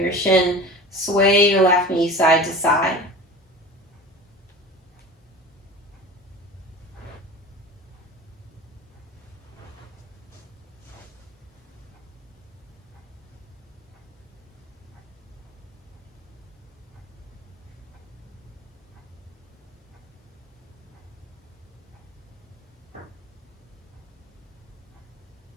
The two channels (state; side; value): normal; both; correlation 0.35